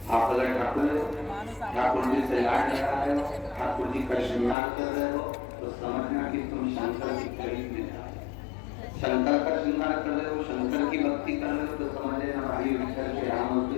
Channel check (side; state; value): right; drops out; at 4.5 s